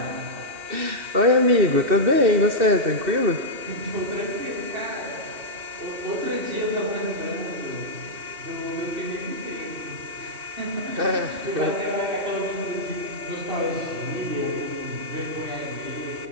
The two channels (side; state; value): left; late; 2.6 ms